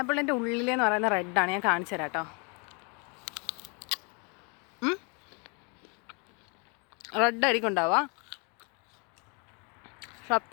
ഉള്ളിലെന്ന് പറയുന്ന റെഡാണ്. ഞാൻ കാണിച്ചു തരാം കേട്ടോ. റെഡ് ആയിരിക്കും ഉണ്ടാവുക.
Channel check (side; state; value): right; quieter; 33.8 dB